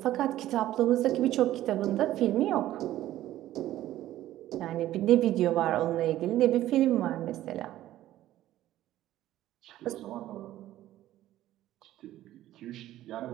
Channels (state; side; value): quieter; left; 14.0 dB